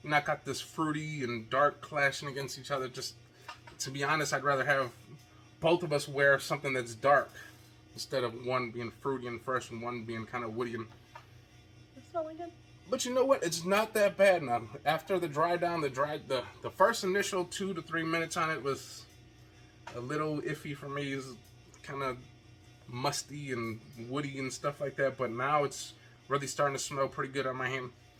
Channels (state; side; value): identical; both; correlation 1.00